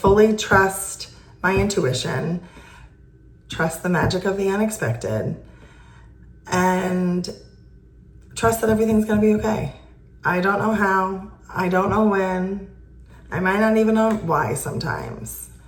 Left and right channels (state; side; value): identical; both; correlation 1.00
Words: trust my intuition, trust the magic of the unexpected, and trust that everything's going to be okay. I don't know how. I don't know when. I might not even know why sometimes.